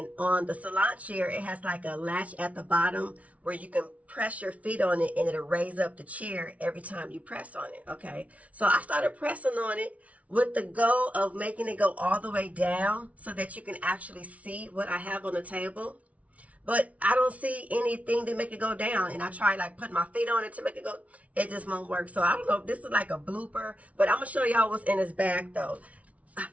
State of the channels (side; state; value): left; late; 0.067 ms